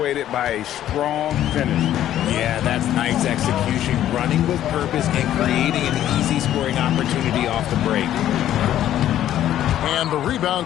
by a strong finish. Yeah, that's nice execution. Running with purpose and creating an easy scoring opportunity off the break. And the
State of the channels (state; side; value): quieter; right; 12.0 dB